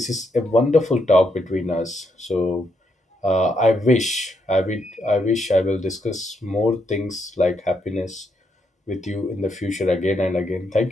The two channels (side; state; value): both; normal; correlation 0.78